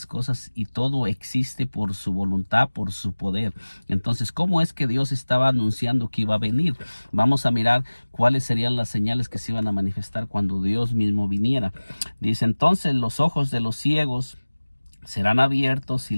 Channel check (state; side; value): inverted; both; correlation -1.00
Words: cosas y todo existe por su voluntad, por su poder. Entonces, ¿cómo es que Dios estaba anunciando que iba a venir? Vamos a mirar cuáles serían las señales que se iban a manifestar cuando Dios mismo viniera. Dice, entonces los ojos de los ciegos serán abiertos y